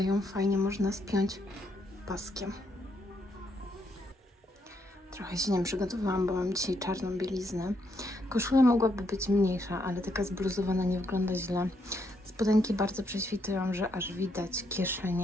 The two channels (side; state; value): both; normal; correlation 0.76